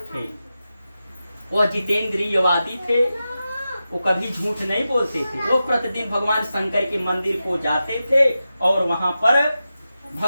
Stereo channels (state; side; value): inverted; both; correlation -0.92